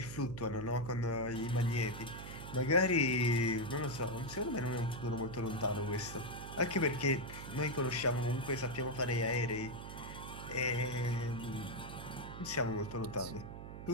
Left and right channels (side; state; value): right; noise; hum, 10 dB below the sound